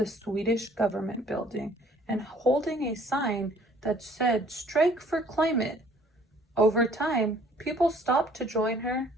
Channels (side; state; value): both; normal; correlation 0.57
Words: Swedish government building and holding a sign that said, "Strike for climate." Over time, people stopped to join her,